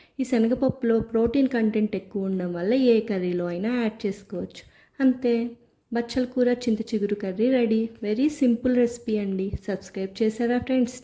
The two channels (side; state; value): both; identical; correlation 1.00